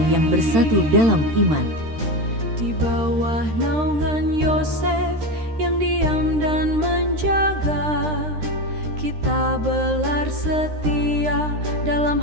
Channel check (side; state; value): left; late; 13 ms